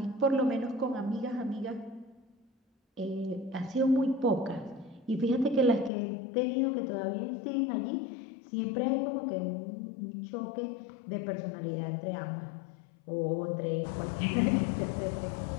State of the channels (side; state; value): right; drops out; at 5.9 s